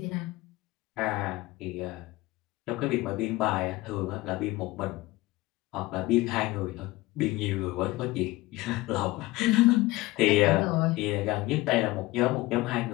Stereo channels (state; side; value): quieter; right; 19.8 dB